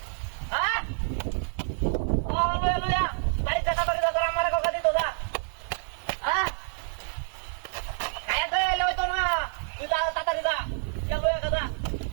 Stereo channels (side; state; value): left; silent; 57 dB below the other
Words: হ্যাঁ লইয়া লইয়া বাড়িতে তাড়াতাড়ি দাঁড়া আমার কথা দিত যা হ্যাঁ খাইয়াতে এলে হইতো না তুই তাড়াতাড়ি যা লইয়া কথা